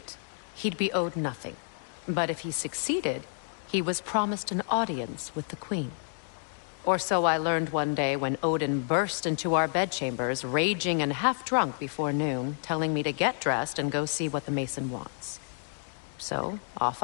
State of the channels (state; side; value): silent; right; digital silence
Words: he'd be owed nothing. But if he succeeded, he was promised an audience with the queen. Or so I learned one day when Odin burst into our bedchambers, raging and half-drunk before noon, telling me to get dressed and go see what the mason wants. So, off